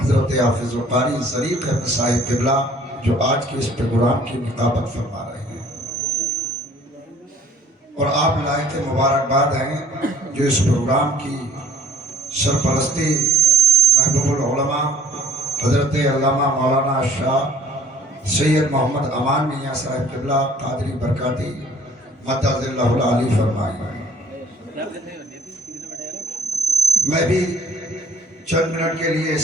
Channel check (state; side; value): normal; both; correlation 0.54